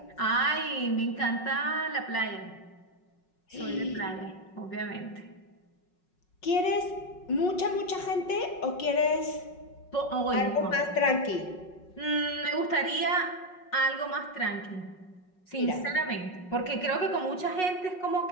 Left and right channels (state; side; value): late; right; 5.4 ms